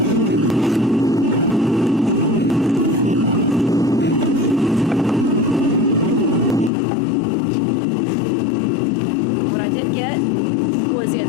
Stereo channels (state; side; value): drops out; right; at 6.7 s